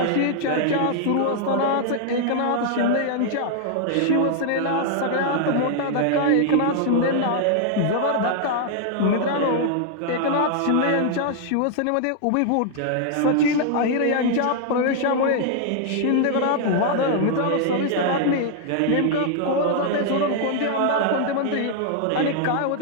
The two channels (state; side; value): different; both; correlation 0.00